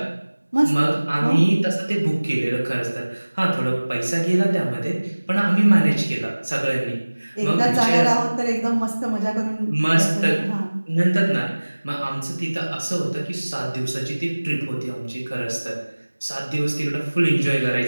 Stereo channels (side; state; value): both; inverted; correlation -1.00